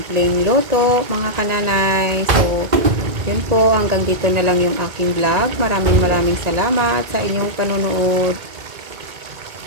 luto, mga kananay. So, yun po. Hanggang dito na lang yung aking vlog. Maraming salamat sa inyong panonood.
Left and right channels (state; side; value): late; left; 1.9 ms